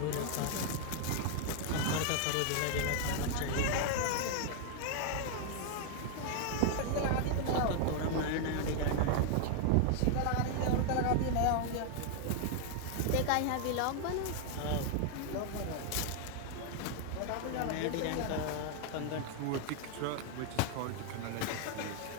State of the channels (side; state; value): both; different; correlation 0.00